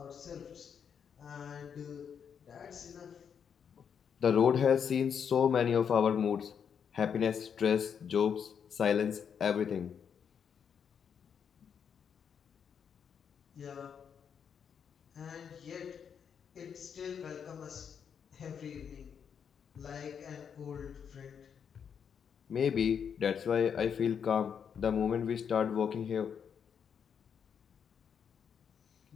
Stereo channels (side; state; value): right; quieter; 7.4 dB